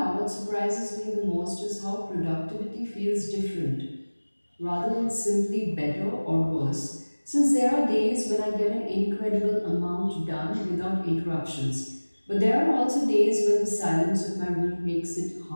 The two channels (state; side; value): inverted; both; correlation -1.00